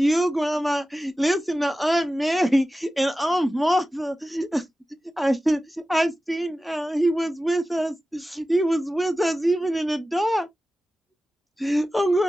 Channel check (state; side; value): normal; both; correlation 0.95